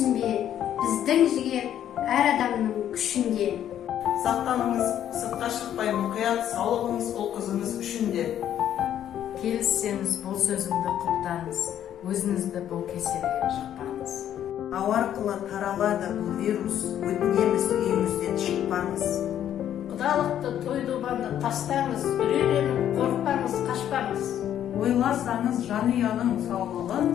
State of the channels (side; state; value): right; quieter; 10.6 dB